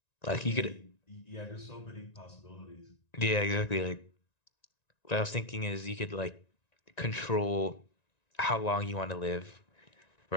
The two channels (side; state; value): right; late; 1.9 ms